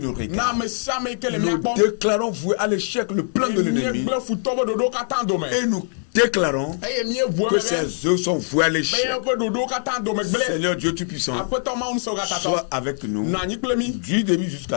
regardent. Nous déclarons voué à l'échec le plan de l'ennemi et nous déclarons que ces œuvres sont vouées à l'échec. Seigneur Dieu Tout-Puissant, sois avec nous du début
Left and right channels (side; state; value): right; silent; digital silence